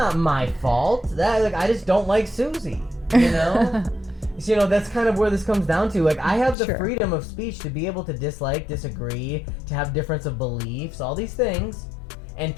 my fault. I just don't like Susie, you know? You know, that's kind of where this comes down to. Like, I have the freedom of speech to be able to dislike, disagree, to have difference of beliefs, all these things. And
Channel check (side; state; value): right; drops out; at 6.6 s